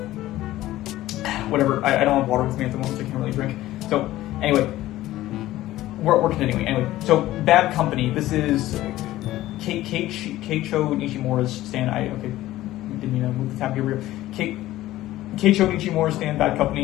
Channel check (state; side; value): quieter; right; 15.5 dB